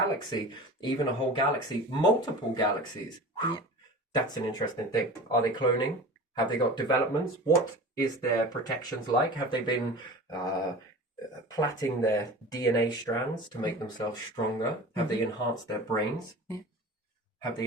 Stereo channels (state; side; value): normal; both; correlation 0.35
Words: even a whole galaxy, multiple galaxies. That's an interesting thing. Are they cloning? Have they got developments? What is their protections like? Have they been plaiting their DNA strands to make themselves stronger? Have they enhanced their brains? Have they